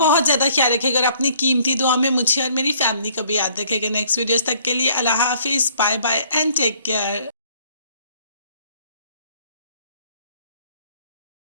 ज़्यादा ख्याल रखिएगा और अपनी कीमती दुआ में मुझे और मेरी फैमिली को भी याद रखिएगा। नेक्स्ट वीडियोस तक के लिए अल्लाह हाफिज़, bye bye and take care.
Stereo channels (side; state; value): both; inverted; correlation -0.61